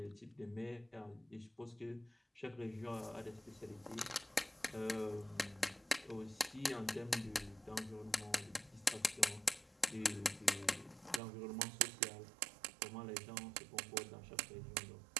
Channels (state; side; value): drops out; left; at 11.2 s